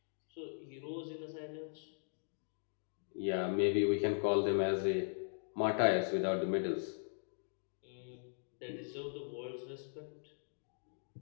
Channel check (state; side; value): silent; right; digital silence